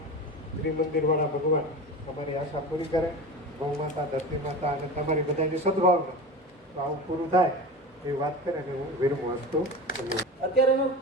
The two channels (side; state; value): both; normal; correlation 0.30